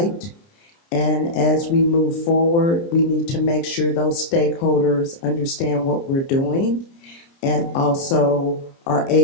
And as we move forward, we need to make sure those stakeholders understand what we're doing and also are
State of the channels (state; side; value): late; right; 30 ms